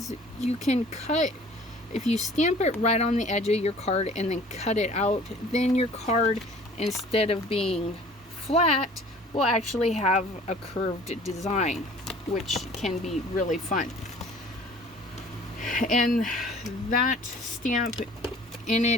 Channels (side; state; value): both; normal; correlation 0.50